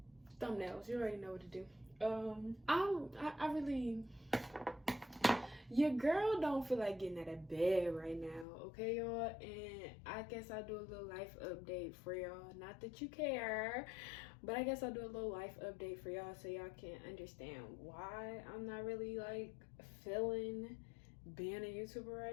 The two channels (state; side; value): drops out; right; at 8.5 s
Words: Thumbnails, you already know what to do. I really, your girl don't feel like getting out of bed right now, okay, y'all? And I guess I'll do a little life update for y'all. Not that you care, but I guess I'll do a little life update for y'all so y'all can understand why I'm not really like feeling being a YouTuber